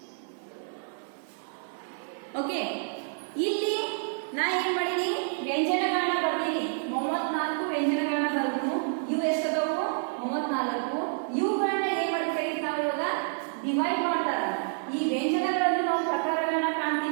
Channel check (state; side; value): silent; left; 59 dB below the other